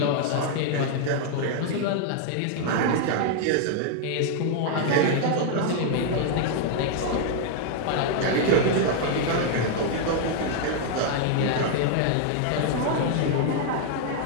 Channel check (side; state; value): both; different; correlation 0.00